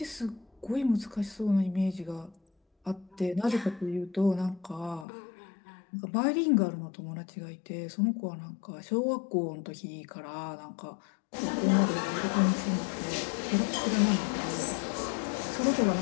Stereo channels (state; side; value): drops out; right; at 5.1 s